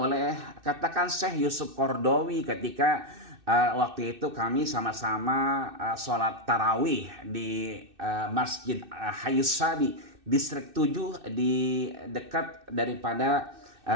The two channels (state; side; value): late; left; 2.6 ms